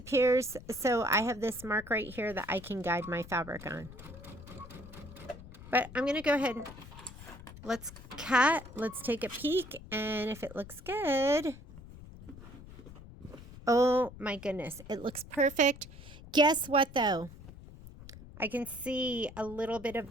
so I have this mark right here that I can guide my fabric on. But I'm going to go ahead and let's cut, let's take a peek, and if it looks good, oh my goodness, it looks perfect. Guess what though? I can see a little bit of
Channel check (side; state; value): left; noise; rumble, 16 dB below the sound